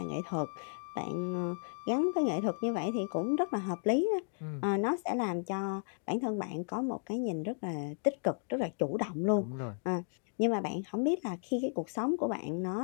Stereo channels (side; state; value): right; silent; digital silence